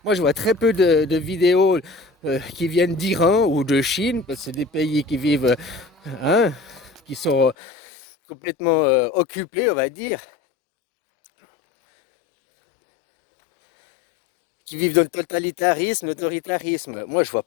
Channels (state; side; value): drops out; right; at 7.6 s